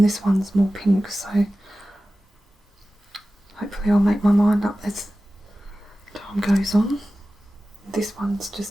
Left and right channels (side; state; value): both; normal; correlation 0.95